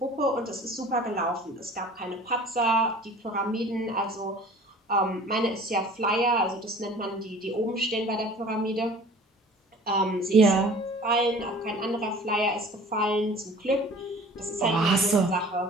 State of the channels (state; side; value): normal; both; correlation 0.46